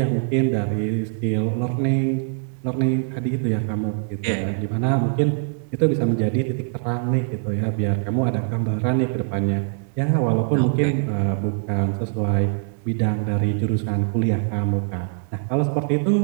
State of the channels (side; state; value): left; silent; 64 dB below the other